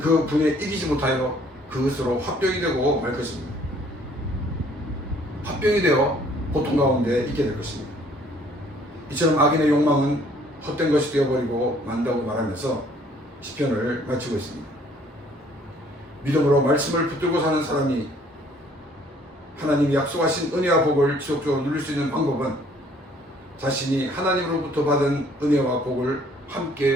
그 분에 이기지 못하여 그것으로 화병이 되고 말 것입니다. 화병이 되어 고통 가운데 있게 될 것입니다. 이처럼 악인의 욕망은 헛된 것이 되어버리고 만다고 말하면서 시편을 마치고 있습니다. 믿음으로 말씀을 붙들고 사는 사람이 하나님이 약속하신 은혜와 복을 지속적으로 누릴 수 있는 방법은 자신이 하나님으로부터 받은 은혜와 복을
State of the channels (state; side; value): normal; both; correlation 0.60